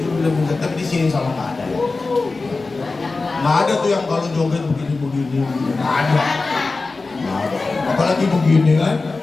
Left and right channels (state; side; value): quieter; right; 3.7 dB